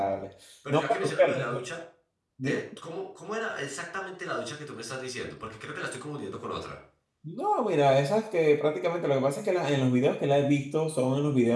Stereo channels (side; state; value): both; identical; correlation 1.00